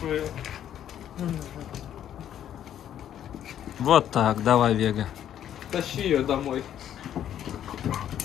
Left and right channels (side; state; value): right; quieter; 10.5 dB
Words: Вот так, давай, Вега. Тащи ее домой.